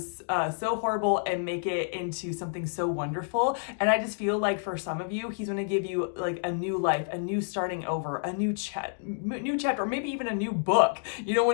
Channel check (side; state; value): right; silent; digital silence